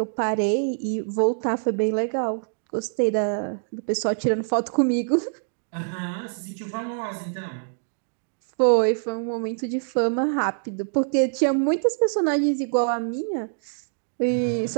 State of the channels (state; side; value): silent; left; digital silence